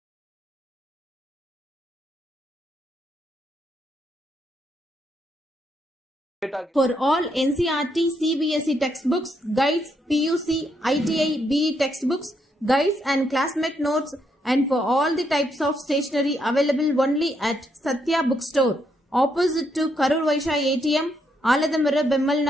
For all NCERT, CBSE textbooks, guides, PUC, ITI, BE textbooks, guides and classmate notes, and for all the types of stationery available only at Satya Bookstore, opposite to Karur Vaishya ATM, Aladamara Bemmal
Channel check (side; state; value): both; normal; correlation 0.77